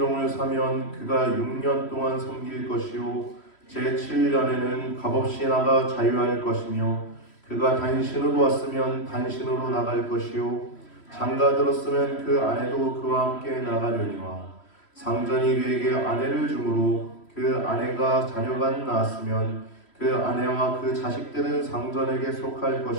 사면 그가 6년 동안 섬길 것이요 제7년에는 값없이 나가 자유할 것이며 그가 단신으로 왔으면 단신으로 나갈 것이요 장가 들었으면 그 아내도 그와 함께 나가려니와 상전이 그에게 아내를 주므로 그 아내가 자녀가 낳았으면 그 아내와 그 자식들은 상전에게 속할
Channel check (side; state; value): right; late; 3.1 ms